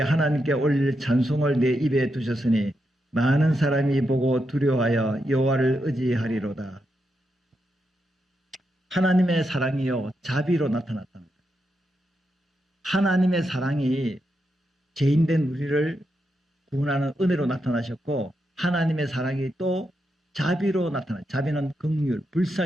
올릴 찬송을 내 입에 두셨으니 많은 사람이 보고 두려워하여 여호와를 의지하리로다. 하나님의 사랑이요 자비로 나타났다는 거예요. 하나님의 사랑이 죄인된 우리를 구원하는 은혜로 나타나셨고 하나님의 사랑이 또 자비로 나타나요. 자비는 긍휼,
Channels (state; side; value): normal; both; correlation 0.84